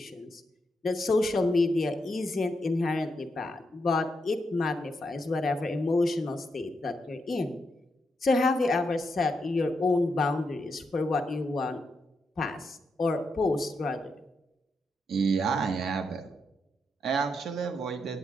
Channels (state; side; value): normal; both; correlation 0.83